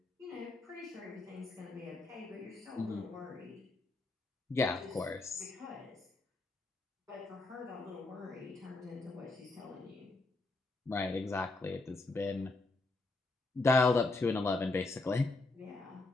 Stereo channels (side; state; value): right; quieter; 3.3 dB